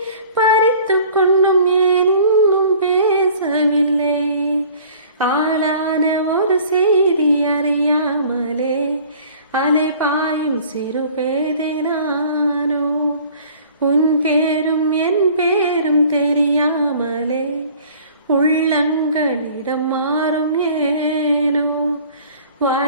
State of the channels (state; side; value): inverted; both; correlation -0.50